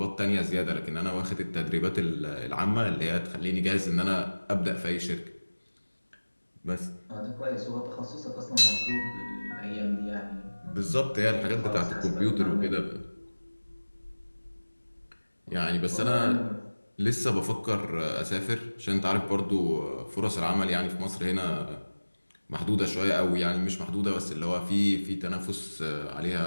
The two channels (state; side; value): inverted; both; correlation -1.00